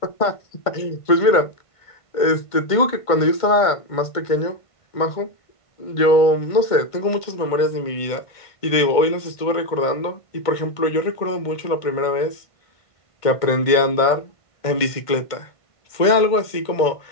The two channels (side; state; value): right; late; 1.5 ms